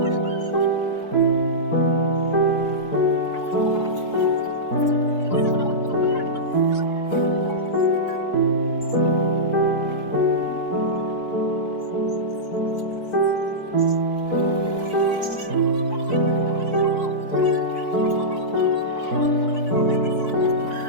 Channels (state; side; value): late; right; 4.6 ms